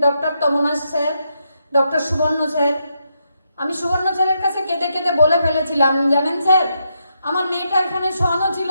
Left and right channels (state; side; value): inverted; both; correlation -0.81